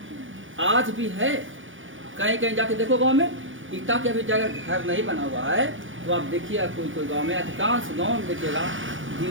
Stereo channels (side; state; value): left; late; 0.57 ms